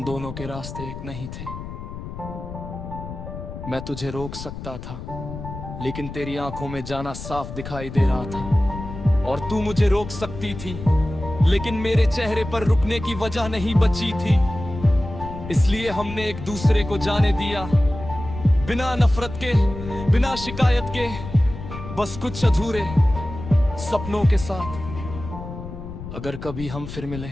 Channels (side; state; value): left; noise; rumble, 10 dB below the sound